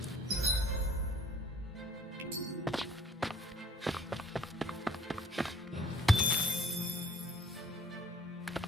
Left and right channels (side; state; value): both; normal; correlation 0.57